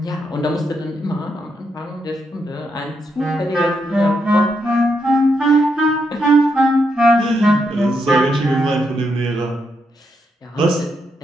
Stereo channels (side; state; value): both; normal; correlation 0.80